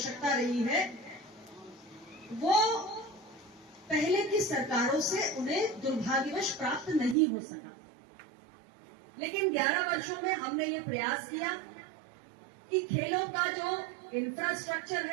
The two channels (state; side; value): drops out; left; at 7.2 s